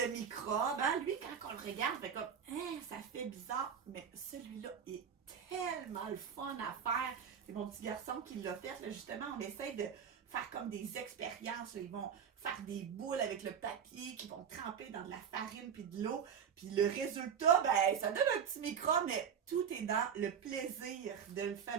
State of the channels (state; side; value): quieter; left; 7.6 dB